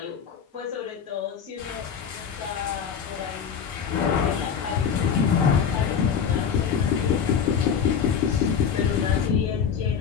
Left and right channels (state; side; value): quieter; right; 7.2 dB